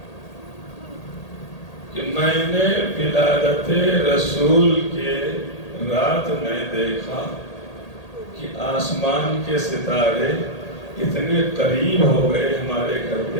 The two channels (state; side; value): late; right; 1.8 ms